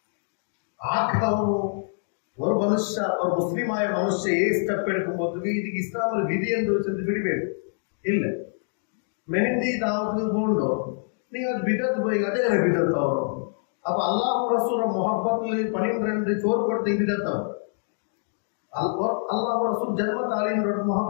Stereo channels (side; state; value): right; silent; digital silence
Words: ಆಕವನು ஒரு ಮನುಷ್ಯ ஒரு ಮುಸ್ಲಿಮಾಯ ಮನುಷ್ಯ ಸ್ಟೆಪ್ ಎಡ್ಕೊಂಬೋದು ಇದಕ್ಕೆ ಇಸ್ಲಾಮಲ್ಲಿ ವಿಧಿ ಎಂದು ಚೆಂದ ಬಿಡಬೇಕು ಇಲ್ಲ ಮೆಹಂದಿ ದಾವತ್ಗೆ ಗೊಂಡು ನೀವು ಅದು ಬಿದ್ದದ್ದು போய் ಅದೇ ಬಿದ್ದದ್ದು ಅವರು ಅಪ್ಪ ಅಲ್ಲಾಹ್ ರಸೂಲ ಮೊಹಬ್ಬತ್ಲಿ 12 ಚೋರ್ ಕೊಡ್ತಾ ಬಿದ್ದದ್ದು ಅಲ್ಲಾಹ್ ರಸೂಲ್ ಜನ್ಮ ತಾಲೀಮ್